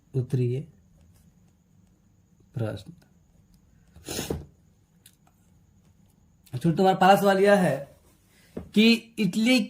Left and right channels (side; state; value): both; identical; correlation 1.00